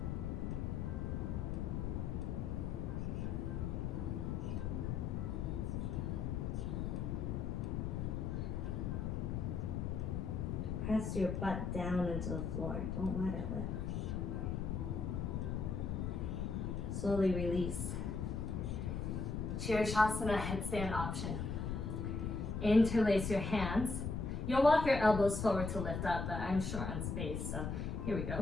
Press your butt down into the floor. Don't let it lift. Slowly release. Sheersh-Asana Headstand option. Interlace your hands. You'll walk your elbows forward to lift up, but I'm short on space, so here we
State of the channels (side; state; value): left; noise; rumble, 1 dB below the sound